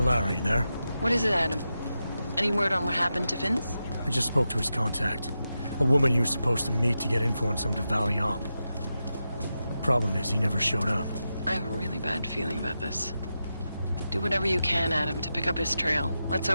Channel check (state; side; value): inverted; both; correlation -0.89